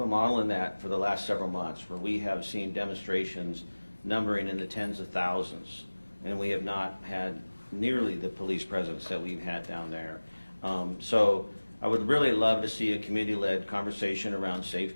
model in that for the last several months where we have seen demonstrations numbering in the tens of thousands, and we have not had nearly the police presence that we've had down there. So I would really love to see a community-led conversation around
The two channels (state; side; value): inverted; both; correlation -1.00